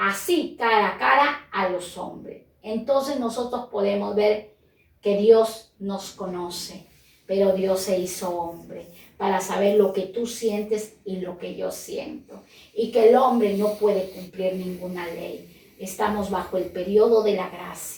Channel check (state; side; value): identical; both; correlation 1.00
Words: cara a cara a los hombres. Entonces nosotros podemos ver que Dios nos conoce, pero Dios se hizo hombre para saber lo que tú sientes y lo que yo siento. Y que el hombre no puede cumplir ninguna ley. Estamos bajo el periodo de la